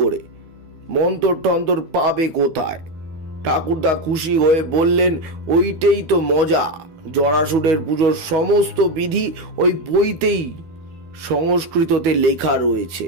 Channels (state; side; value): late; left; 13 ms